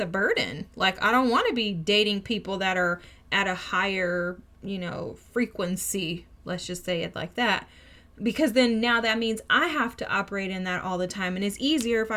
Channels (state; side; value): identical; both; correlation 1.00